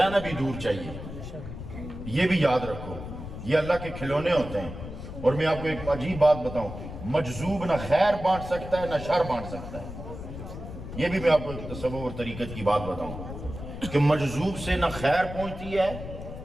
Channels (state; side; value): noise; left; rumble, 10 dB below the sound